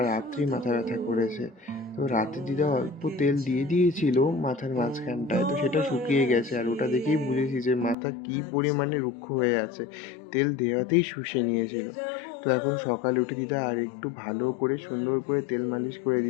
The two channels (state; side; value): drops out; right; at 8.0 s